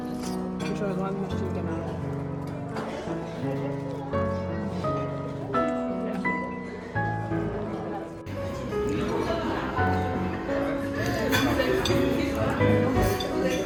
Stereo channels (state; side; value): identical; both; correlation 1.00